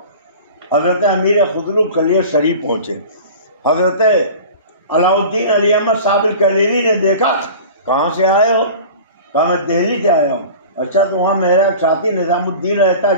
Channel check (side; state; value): both; inverted; correlation -0.38